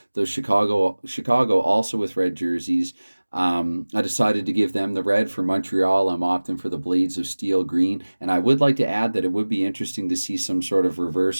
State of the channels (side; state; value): both; inverted; correlation -1.00